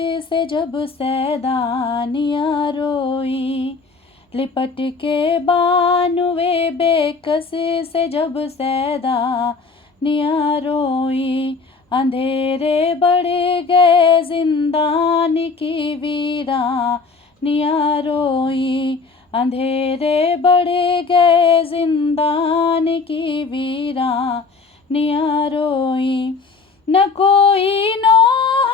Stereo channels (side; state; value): right; quieter; 4.4 dB